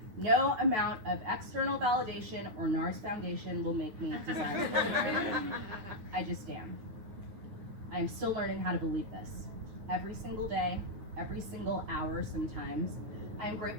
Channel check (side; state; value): left; late; 9.4 ms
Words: No amount of external validation or NARS foundation will make me desirable. I just am. I am still learning how to believe this. Every single day, every single hour sometimes, I am